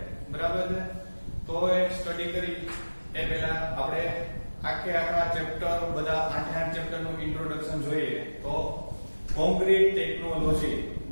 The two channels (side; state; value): both; inverted; correlation -1.00